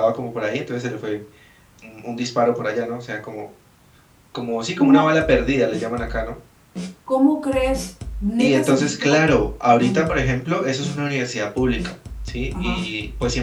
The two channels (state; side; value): identical; both; correlation 1.00